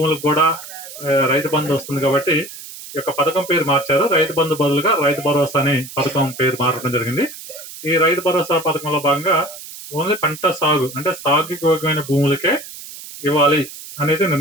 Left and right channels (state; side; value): noise; right; hiss, 14 dB below the sound